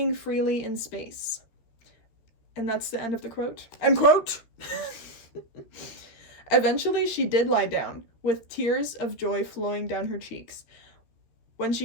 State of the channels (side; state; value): right; late; 13 ms